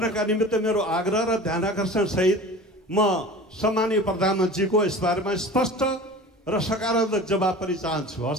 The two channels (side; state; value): both; normal; correlation 0.38